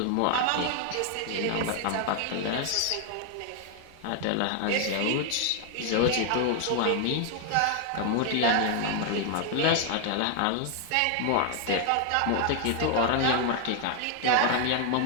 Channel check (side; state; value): both; different; correlation 0.00